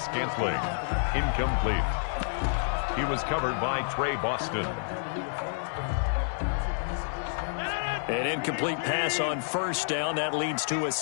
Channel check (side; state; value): right; silent; digital silence